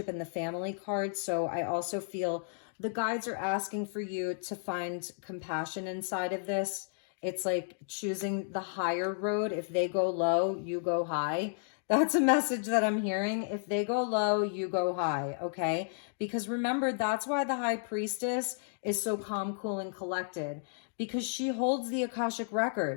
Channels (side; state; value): right; silent; digital silence